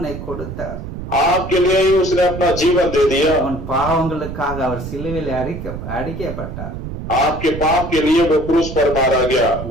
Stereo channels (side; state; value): right; noise; rumble, 8 dB below the sound